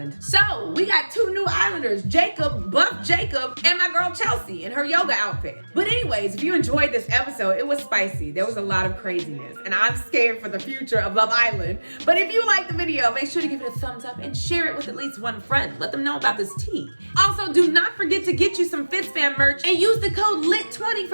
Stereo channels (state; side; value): inverted; both; correlation -1.00